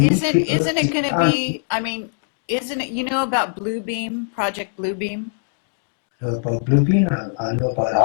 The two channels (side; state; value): right; silent; digital silence